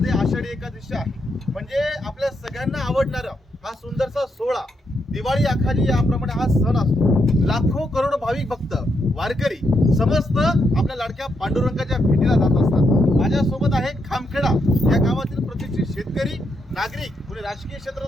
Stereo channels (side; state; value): both; normal; correlation 0.80